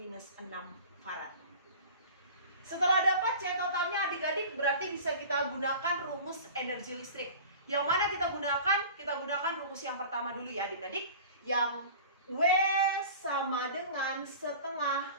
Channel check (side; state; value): both; inverted; correlation -0.39